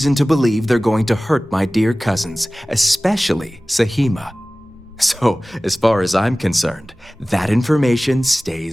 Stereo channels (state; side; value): normal; both; correlation 0.98